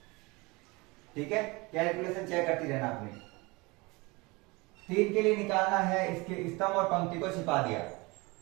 ठीक है, कैलकुलेशन चेक करती रहना आपने। 3 के लिए निकालना है, इसके स्तंभ और पंक्ति को छिपा दिया।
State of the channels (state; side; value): quieter; left; 25.1 dB